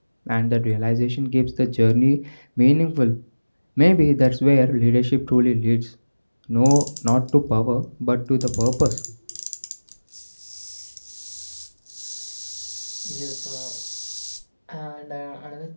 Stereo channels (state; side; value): inverted; both; correlation -1.00